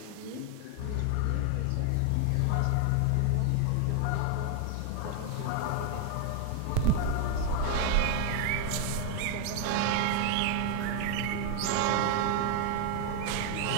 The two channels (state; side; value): different; both; correlation 0.00